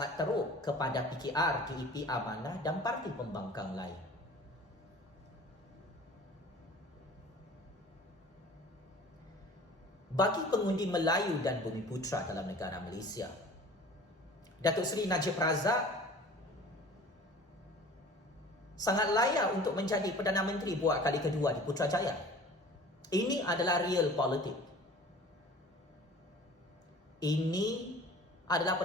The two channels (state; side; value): normal; both; correlation 0.44